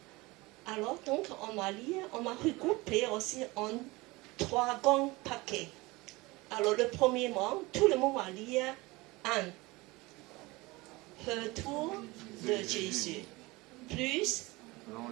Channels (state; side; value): quieter; left; 22.5 dB